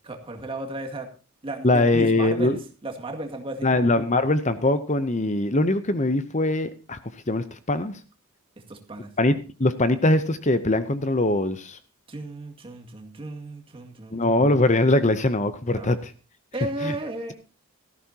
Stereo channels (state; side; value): normal; both; correlation 0.42